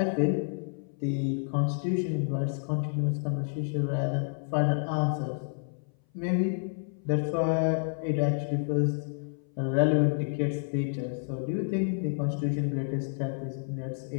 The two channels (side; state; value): right; silent; 57 dB below the other